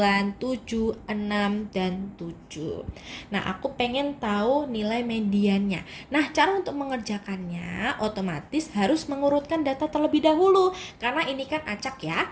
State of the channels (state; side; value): identical; both; correlation 1.00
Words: 7, 6, dan 7. Nah, aku pengen tahu nilai mediannya. Nah, cara untuk mengerjakannya otomatis harus mengurutkan data terlebih dahulu. Karena ini kan acak ya.